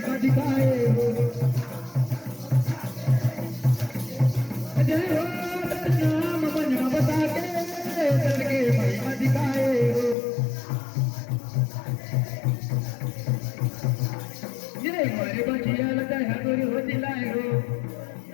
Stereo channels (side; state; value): right; drops out; at 10.2 s